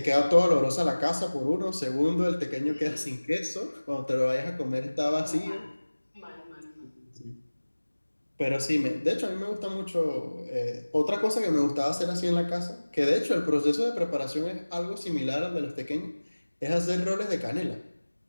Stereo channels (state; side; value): inverted; both; correlation -1.00